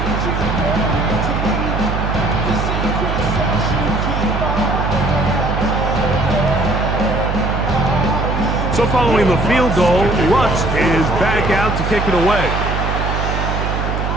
So following the field goal, Lutz is back out to kick it away.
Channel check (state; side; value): noise; right; hum, 1 dB below the sound